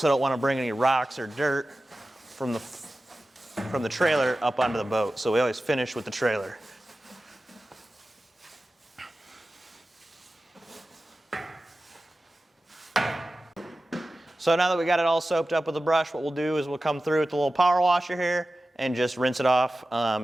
don't want to bring any rocks or dirt from the trailer up onto the boat. So we always finish with the trailer. So now that we got it all soaked up with the brush, what we'll do is we'll come through with the little power washer here and just rinse it off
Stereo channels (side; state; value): both; normal; correlation 0.95